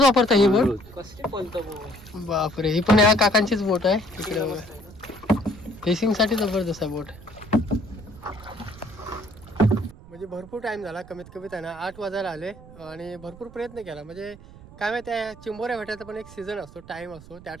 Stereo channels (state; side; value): noise; right; rumble, 19 dB below the sound